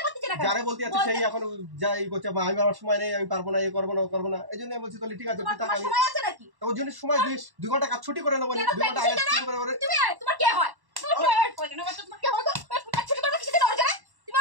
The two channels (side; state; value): left; late; 1.1 ms